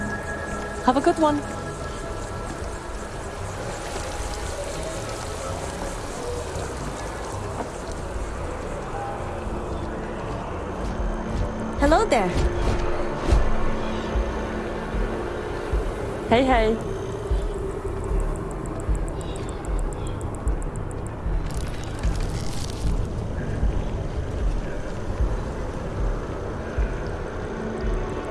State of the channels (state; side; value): identical; both; correlation 1.00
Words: Have a good one. Hello there. Hey, hey.